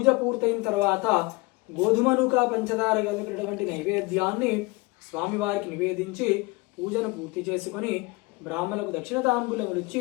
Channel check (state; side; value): quieter; right; 25.1 dB